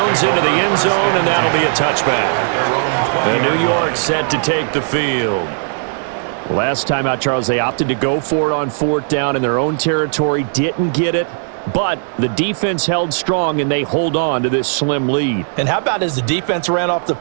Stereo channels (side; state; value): left; silent; 64 dB below the other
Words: into the end zone, and that'll be a touchback. And New York set to take the field. Last time out, Charles, they opted to go for it on 4th down in their own territory. Didn't get it, but the defense held strong, and they hold on to this slim lead. And how about as the defense ran off the